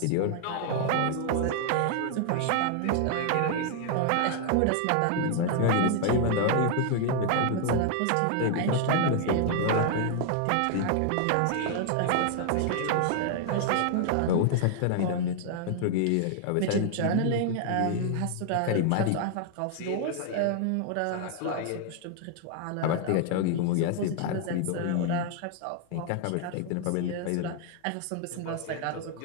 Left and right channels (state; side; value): different; both; correlation 0.00